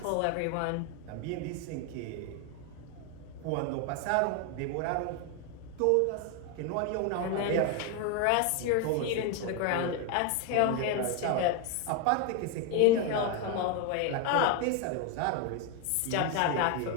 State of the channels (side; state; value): both; different; correlation 0.01